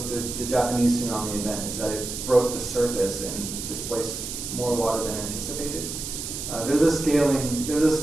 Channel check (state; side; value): noise; right; hiss, 6 dB below the sound